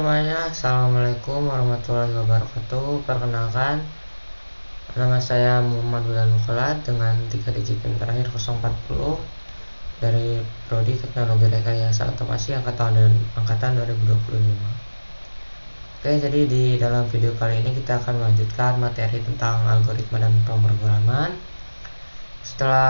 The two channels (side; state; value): both; inverted; correlation -1.00